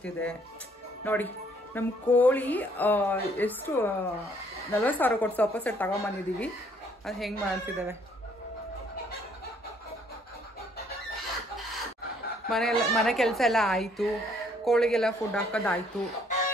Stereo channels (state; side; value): normal; both; correlation 0.64